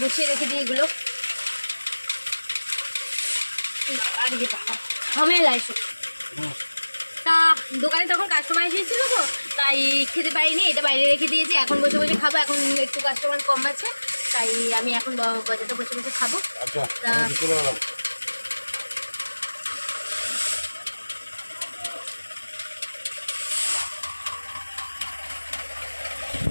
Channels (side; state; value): both; inverted; correlation -1.00